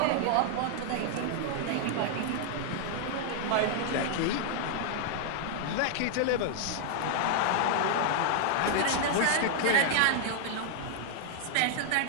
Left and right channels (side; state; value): both; different; correlation 0.00